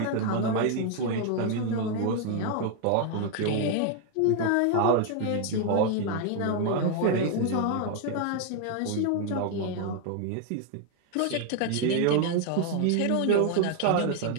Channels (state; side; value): different; both; correlation 0.00